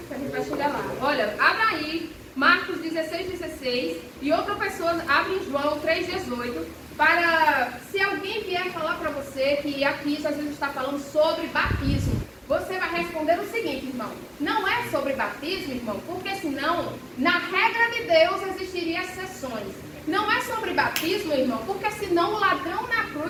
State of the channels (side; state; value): both; identical; correlation 1.00